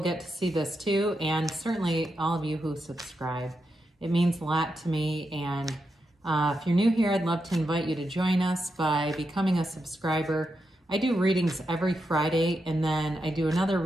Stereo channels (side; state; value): both; normal; correlation 0.85